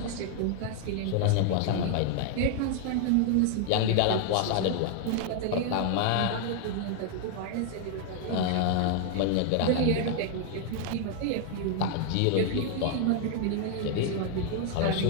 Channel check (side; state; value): both; different; correlation 0.00